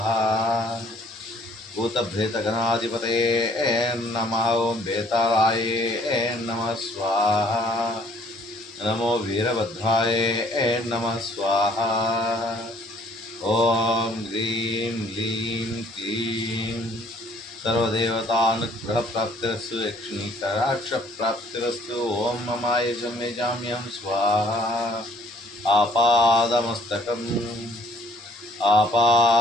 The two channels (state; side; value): normal; both; correlation 0.60